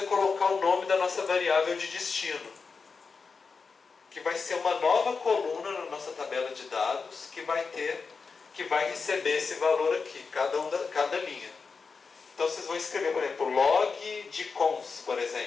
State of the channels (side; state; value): right; quieter; 4.9 dB